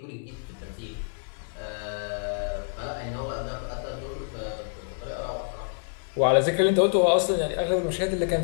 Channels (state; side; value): silent; right; digital silence